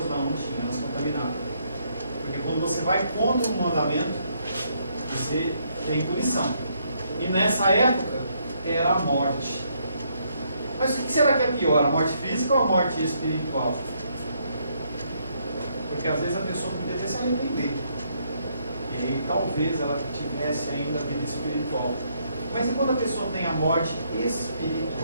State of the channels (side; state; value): both; inverted; correlation -0.72